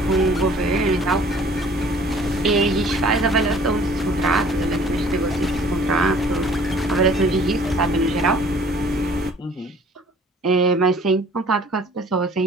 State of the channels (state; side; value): normal; both; correlation 0.53